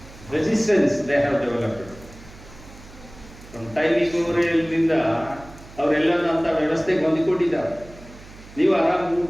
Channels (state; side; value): noise; right; hum, 19 dB below the sound